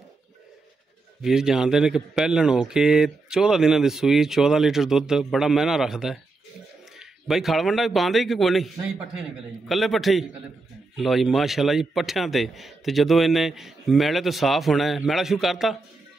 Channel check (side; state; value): left; quieter; 3.6 dB